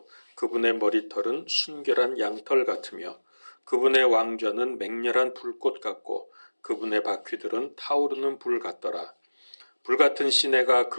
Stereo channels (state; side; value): inverted; both; correlation -1.00